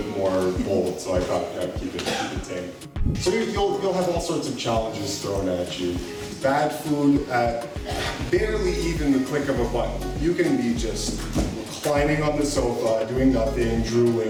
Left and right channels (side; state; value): both; identical; correlation 1.00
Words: more bold, so I thought I'd keep it tame. So you'll have all sorts of challenges thrown at you. Bad food at barely even the click of a button. You can be just reclining on the sofa, doing nothing,